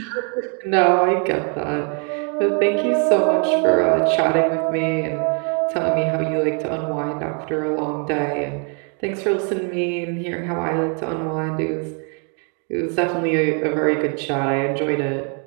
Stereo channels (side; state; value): left; quieter; 39.3 dB